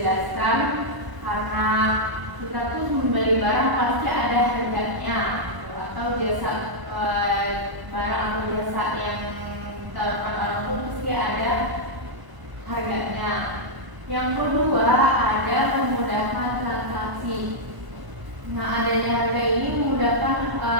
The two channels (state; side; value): late; left; 1.0 ms